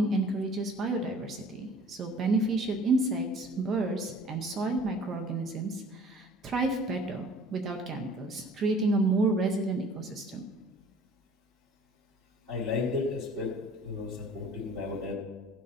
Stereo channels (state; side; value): normal; both; correlation 0.50